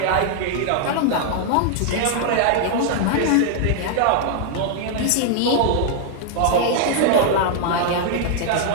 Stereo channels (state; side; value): different; both; correlation 0.00